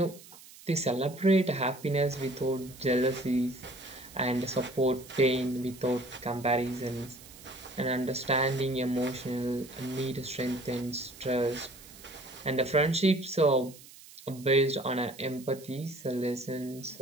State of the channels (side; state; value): right; noise; hiss, 20 dB below the sound